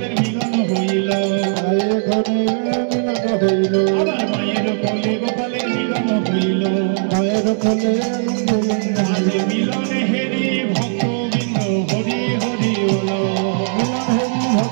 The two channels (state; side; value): silent; left; 67 dB below the other